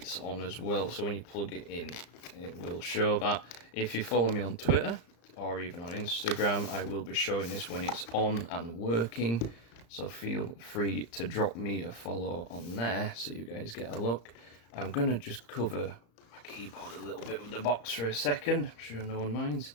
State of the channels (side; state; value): right; late; 35 ms